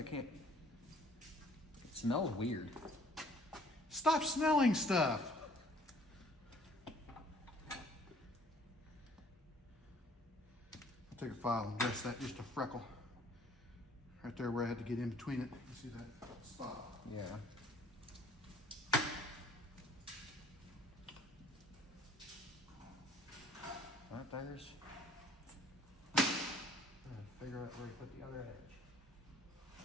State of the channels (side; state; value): both; normal; correlation 0.57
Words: can't. It smells weird. Stop smelling stuff. I'll take a file and dress that just a freckle. Right there where I had to get in between it. You see that spot? Yeah. Right there's. Figure out where to put the other edge.